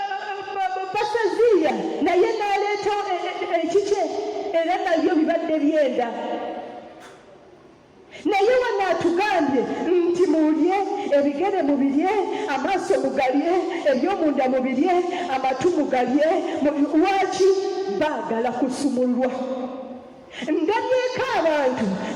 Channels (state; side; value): identical; both; correlation 1.00